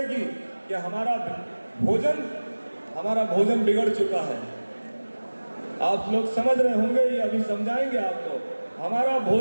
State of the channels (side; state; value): both; inverted; correlation -1.00